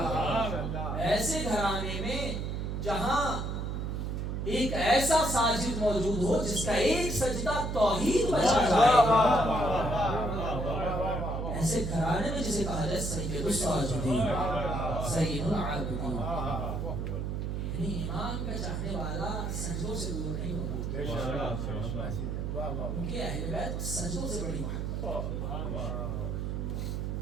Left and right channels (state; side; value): noise; right; hum, 2 dB below the sound